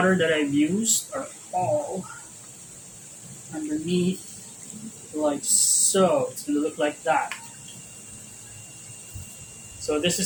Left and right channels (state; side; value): identical; both; correlation 1.00